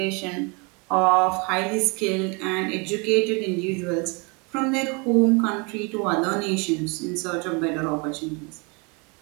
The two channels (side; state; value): left; quieter; 30.9 dB